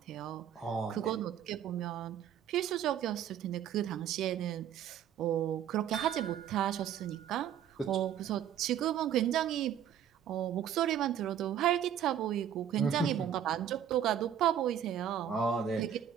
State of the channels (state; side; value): quieter; left; 9.6 dB